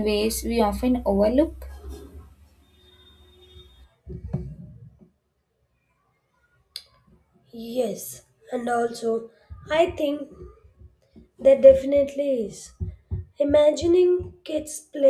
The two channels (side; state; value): both; identical; correlation 1.00